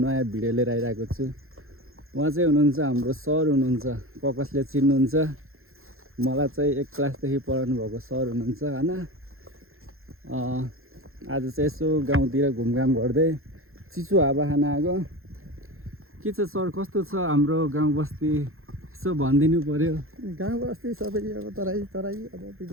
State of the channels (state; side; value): late; left; 0.61 ms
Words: भिडियो लिएर आइरहेको छु। उहाँ चाहिँ हुनुहुन्छ हाम्रो सर हुनुहुन्छ, प्रकाशले चिन्नुहुन्छ। मलाई चाहिँ 1 क्लासदेखि पढाउनु भएको सर हुनुहुन्छ हैन। आज चाहिँ यसो गाउँतिर घुमघाम गर्दै चिसो हावा खान आएको। के छ सर, कस्तो छ हाम्रो गाउँ बस्ती? यसो भनिदिनु पर्यो। गाउँ बस्ती सबै अब तराई अब